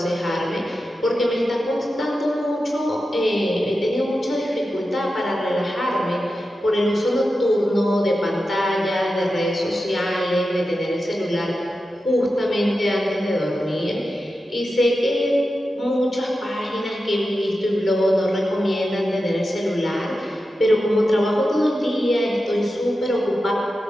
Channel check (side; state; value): both; normal; correlation 0.91